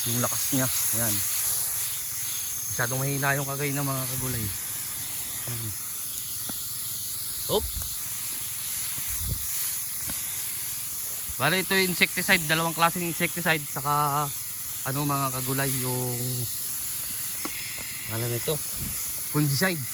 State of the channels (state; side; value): identical; both; correlation 1.00